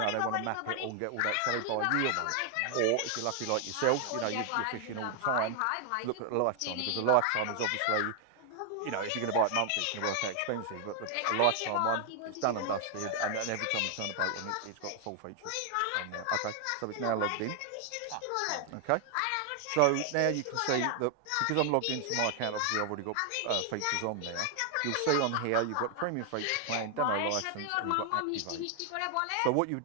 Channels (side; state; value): both; different; correlation 0.00